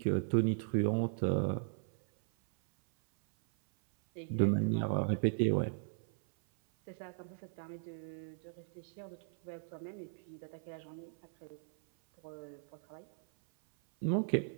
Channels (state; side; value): silent; left; 53 dB below the other